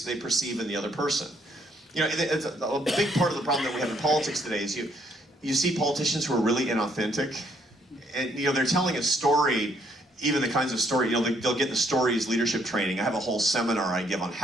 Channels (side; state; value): both; normal; correlation 0.69